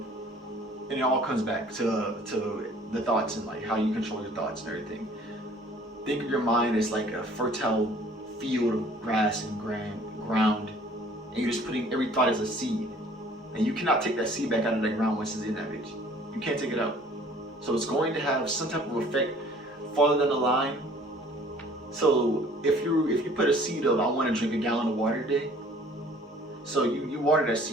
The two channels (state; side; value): normal; both; correlation 0.53